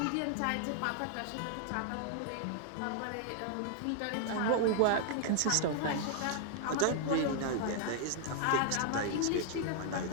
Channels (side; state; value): both; different; correlation 0.00